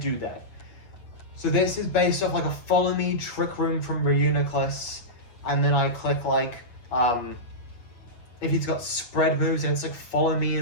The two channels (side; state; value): right; late; 8.6 ms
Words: that. So this is based off, like, a Follow Me Trick Room from Reuniclus, and then I click, like, if he's got spread moves, and it's like Follow Me